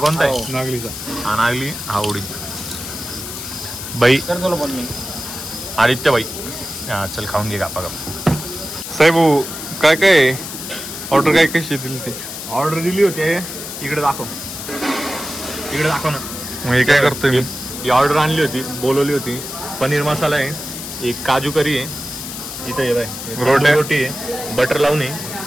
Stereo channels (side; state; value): left; noise; hiss, 8 dB below the sound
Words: आहे नागलीचा हा नागली हा उडीद बाई आदित्य बाई हा चल खाऊन घे गापा गप साहेब काय काय ऑर्डर काय कशी दिली ते ऑर्डर दिली होती इकडे दाखव ना मग हे काय करतोय मी ही ऑर्डर आणली होती बोलवली होती पनीर मसाला आहे एक काजू करी आहे इथं ये बाय रोटी आहे बटर लावून आहे